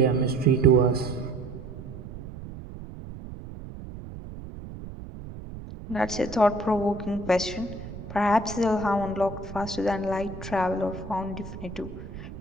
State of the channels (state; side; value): noise; right; rumble, 12 dB below the sound